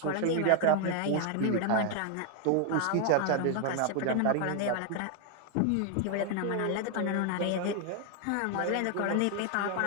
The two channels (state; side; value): different; both; correlation 0.00